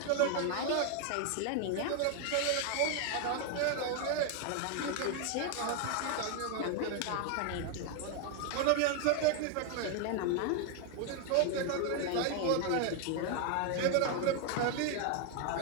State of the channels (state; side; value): different; both; correlation 0.00